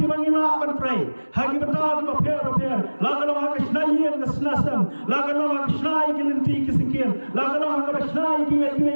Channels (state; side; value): inverted; both; correlation -1.00